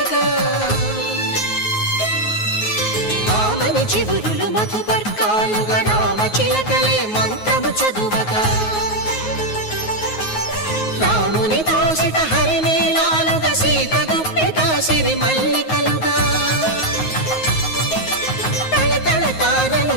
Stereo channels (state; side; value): late; right; 9.4 ms